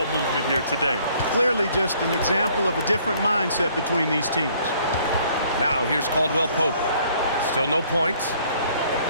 movement here today. Clearly just an example of a different mindset between these teams. Now here's Caldwell Pope. Still no points.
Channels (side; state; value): both; inverted; correlation -0.61